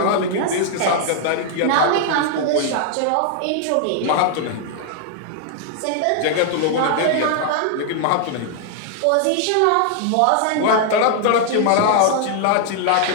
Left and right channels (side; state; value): both; different; correlation 0.00